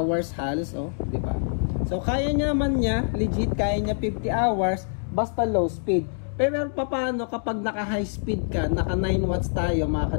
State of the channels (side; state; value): right; silent; digital silence